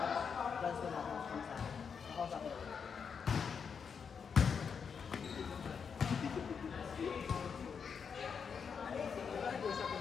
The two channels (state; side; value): quieter; right; 6.4 dB